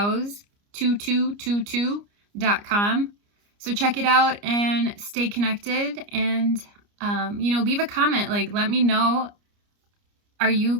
So check it out and stay connected, and leave a comment. Like, let me know, are you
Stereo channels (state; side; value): late; left; 29 ms